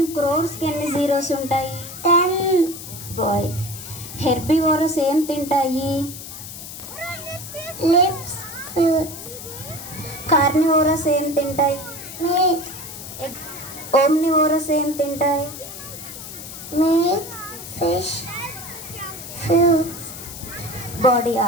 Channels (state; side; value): noise; left; hiss, 11 dB below the sound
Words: క్రోర్స్కి ఎన్ని జీరోస్ ఉంటాయి? 10. బాయ్. హెర్బివోరస్ ఏం తింటాయి? Lips, fruits. కార్నివోరస్ ఏం తింటాయి? Meat. ఓమ్నివోరస్ ఏం తింటాయి? Meat, fish, fruits. Body